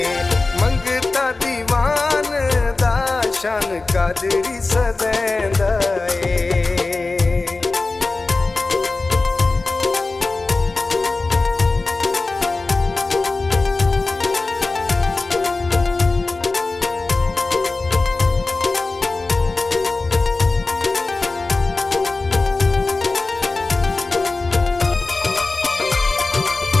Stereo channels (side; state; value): right; quieter; 3.5 dB